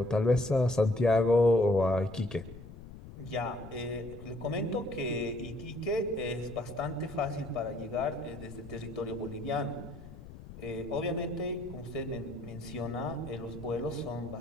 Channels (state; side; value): noise; left; rumble, 15 dB below the sound